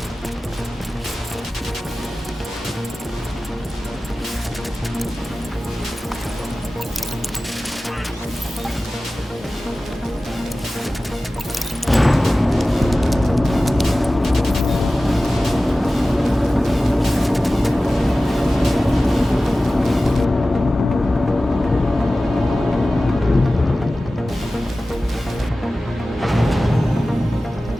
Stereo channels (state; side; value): normal; both; correlation 0.96